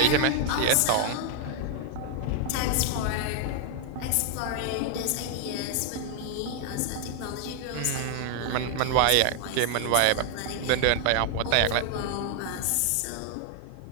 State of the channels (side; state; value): both; different; correlation 0.00